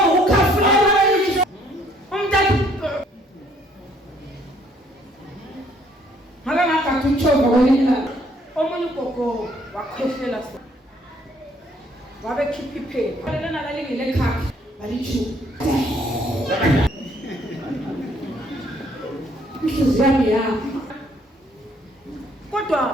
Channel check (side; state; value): both; normal; correlation 0.64